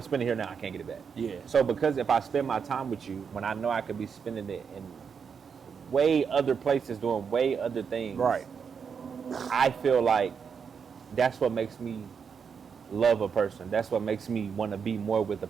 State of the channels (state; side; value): quieter; left; 6.5 dB